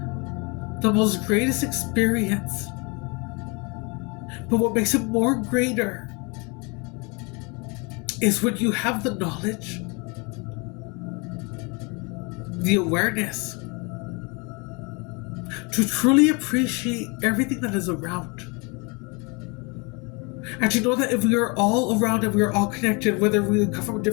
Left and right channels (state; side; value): quieter; right; 30.3 dB